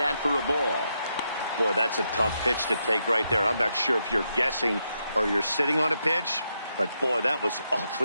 for a ball. Boy, that's a tough pitch to take right there. I'm not sure if you're guessing or you're sitting on a pitch, but boy, that was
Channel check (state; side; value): inverted; both; correlation -0.82